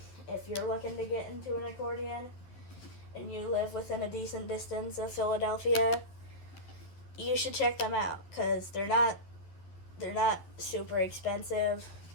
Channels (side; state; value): right; late; 11 ms